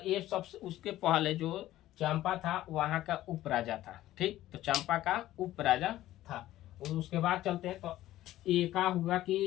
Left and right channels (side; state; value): right; quieter; 14.6 dB